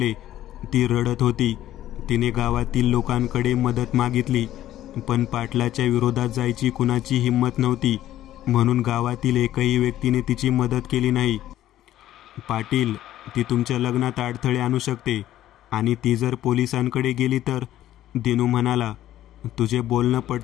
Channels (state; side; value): quieter; right; 13.1 dB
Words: ती रडत होती. तिने गावातील लोकांकडे मदत मागितली, पण पाटलाच्या विरोधात जायची कुणाची हिंमत नव्हती, म्हणून गावातील एकही व्यक्तीने तिची मदत केली नाही. पाटील, ती तुमच्या लग्नात अडथळे आणू शकते आणि ती जर पोलिसांकडे गेली तर. दिनू म्हणाला, तुझे बोलणं